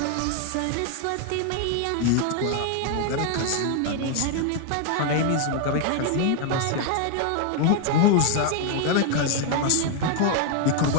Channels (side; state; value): both; different; correlation 0.00